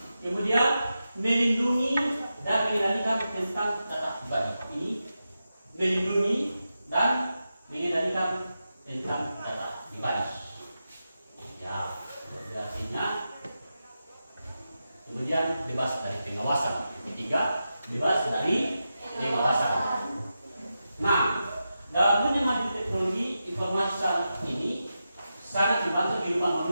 Kemudian melindungi dan mengendalikan tentang data pribadi. Ini melindungi dan mengendalikan tentang data pribadi. Ya, artinya kemudian bebas dari pengawasan. Ketiga, bebas dari pengawasan. Nah, dalam dunia maju teknologi informasi saat ini sangat membantu kehidupan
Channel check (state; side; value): inverted; both; correlation -0.90